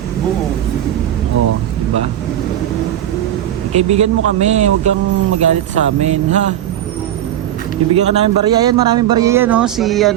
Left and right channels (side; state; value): left; quieter; 11.8 dB